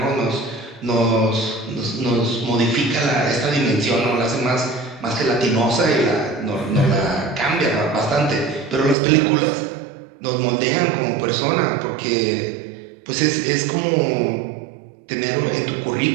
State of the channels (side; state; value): left; drops out; at 9.0 s